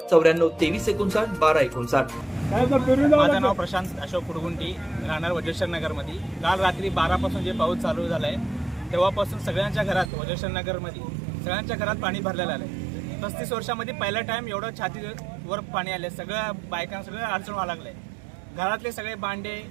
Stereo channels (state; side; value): drops out; left; at 10.1 s